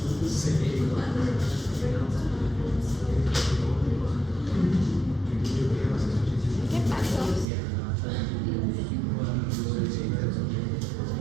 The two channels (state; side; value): drops out; left; at 7.5 s